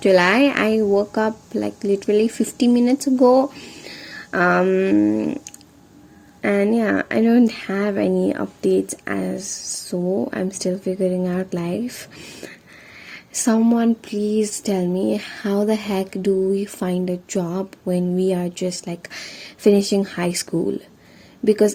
I woke up like literally 50 minutes ago. Um and yeah, I don't have any updates as so I'm still figuring out life. Someone please tell me, how the heck do we find a job when we are just like finishing high school?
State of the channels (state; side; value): identical; both; correlation 1.00